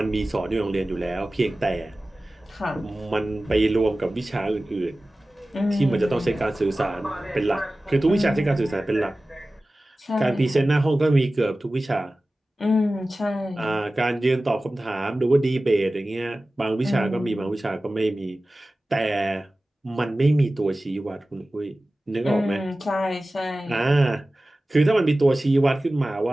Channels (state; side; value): normal; both; correlation 0.96